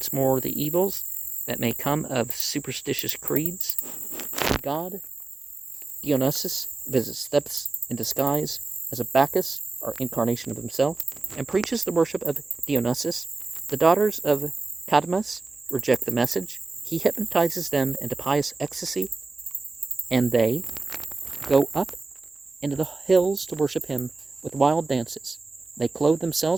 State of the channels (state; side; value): quieter; left; 3.6 dB